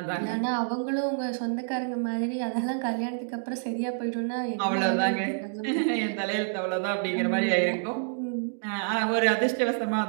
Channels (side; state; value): left; silent; digital silence